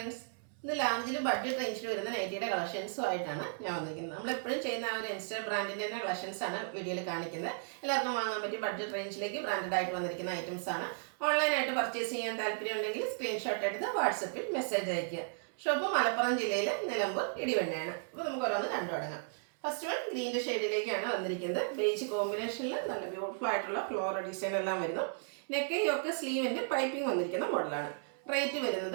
ഇന്ന് ലാർജിൽ budget റേഞ്ചിൽ വരുന്ന നൈറ്റിയുടെ കളക്ഷൻസുമായിട്ടാണ് ഞാൻ വന്നിരിക്കുന്നത്. നമ്മളെപ്പോഴും ചെയ്യുന്ന ആ ഒരു ഇൻസ്റ്റ ബ്രാൻഡിൻ്റെ തന്നെ കളക്ഷൻസാണ് വീഡിയോയിൽ കാണിക്കുന്നത്. എല്ലാവർക്കും വാങ്ങാൻ പറ്റിയ ബഡ്ജറ്റ് റേഞ്ചിലേക്ക് ബ്രാൻഡഡ് ആയിട്ട് വന്നിരിക്കുന്ന ഐറ്റംസ് ആണ്. ഓൺലൈനായിട്ട് പർച്ചേസ് ചെയ്യാൻ താല്പര്യം ഉണ്ടെങ്കിൽ സ്ക്രീൻഷോട്ട് എടുത്ത് വാട്സപ്പിൽ മെസ്സേജ് അയയ്ക്കുക. ഷോപ്പ് മലപ്പുറം ജില്ലയിൽ നിലമ്പൂർ ഇടിവണ്ണയാണ്. അപ്പോൾ നമുക്ക് ഓരോന്ന് കണ്ടു തുടങ്ങാം. ഫസ്റ്റ് വൺ ഗ്രീൻ്റെ ഷെയ്ഡിലേക്കാണ് വന്നിരിക്കുന്നത്. ബേജ് കോമ്പിനേഷനിൽ നല്ല ബ്യൂട്ടിഫുൾ ആയിട്ടുള്ള ഫ്ലോറൽ ഡിസൈൻ എല്ലാം വരുന്നു. നെക്ക് യോക്ക് സ്ലീവിൻ്റെ പൈപ്പിംഗ് വന്നിരിക്കുന്ന മോഡലാണ്. റേറ്റ്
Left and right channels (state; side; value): silent; left; 55 dB below the other